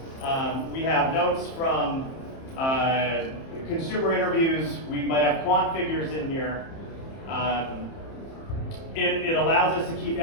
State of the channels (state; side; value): late; right; 30 ms